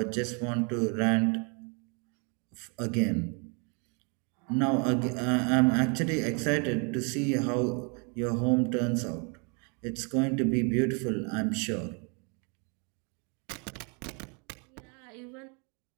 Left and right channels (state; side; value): quieter; left; 35.1 dB